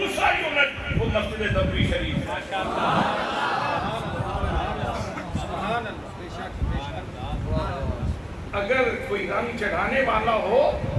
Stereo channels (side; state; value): both; identical; correlation 1.00